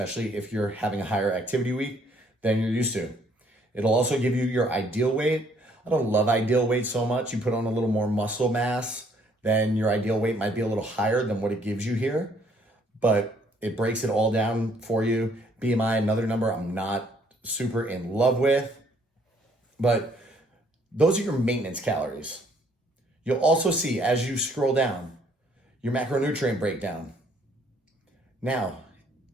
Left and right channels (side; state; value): both; normal; correlation 0.64